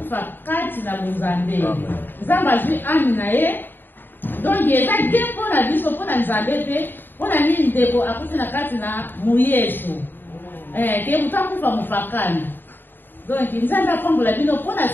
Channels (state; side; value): late; right; 0.094 ms